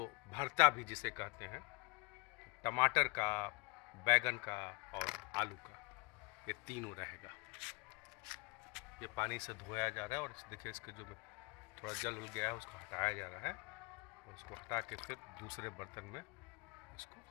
भरता भी जिसे कहते हैं, टमाटर का, बैगन का और आलू का, ये तीनों रहेगा। ये पानी से धोया जा रहा है और देखिए इसके जो थोड़ा जल उल गया है उसको हटाया जा रहा है और उसको हटा के फिर दूसरे बर्तन में इसको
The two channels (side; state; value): right; quieter; 27.0 dB